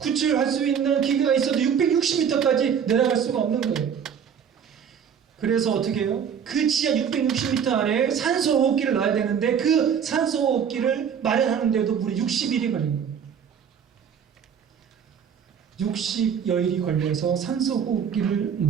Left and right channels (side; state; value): left; quieter; 7.7 dB